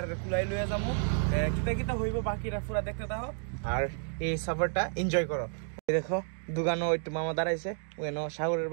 কুলাই লইয়া যাবো, কিতা কিতা হইব বাকিরা পুরা দেখতে থাকো আর এই সফরটা এনজয় করো। দেখো দোকানও একটু মামা দাঁড়াইছে, ওখানে সাগরের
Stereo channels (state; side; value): silent; left; 56 dB below the other